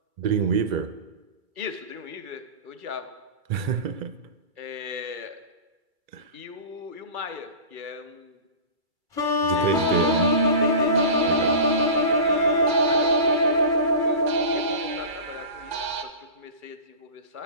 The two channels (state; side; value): late; left; 2.3 ms